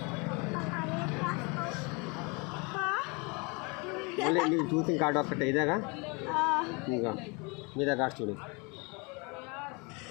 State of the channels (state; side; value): quieter; right; 29.8 dB